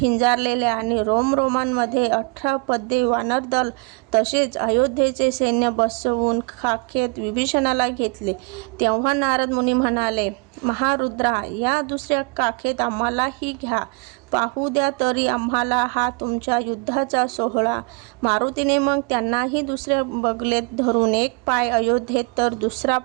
आणि रोमरोमांमध्ये 18 पद्ये वानरदल तसेच अयोध्येचे सैन्य बसवून खाखेत विभीषणाला घेतले. तेव्हा नारद मुनी म्हणाले, महारुद्रा, या दुसऱ्या काखेत आम्हालाही घ्या, पाहू द्या तरी आम्हाला हा तुमच्या युद्धाचा सोहळा. मारुतीने मग त्यांनाही दुसऱ्या बगलेत धरून एक पाय अयोध्येत तर दुसरा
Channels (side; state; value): left; quieter; 32.1 dB